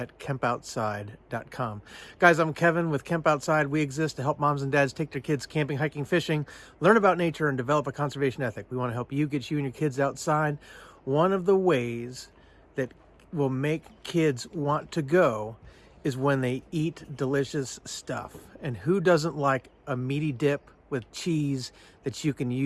kempoutside.com. Guys, I'm Kevin with Kemp Outside. We exist to help moms and dads take their kids camping, hiking, fishing, learn about nature, and develop a conservation ethic. We want to help you get you and your kids outside. One of the ways that will make kids want to go is when they eat delicious stuff. And who doesn't like a meaty dip with cheese that you can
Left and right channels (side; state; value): both; identical; correlation 1.00